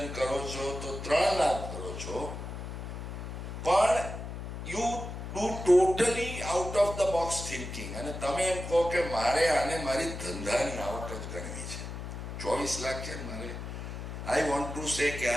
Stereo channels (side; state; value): left; noise; hum, 7 dB below the sound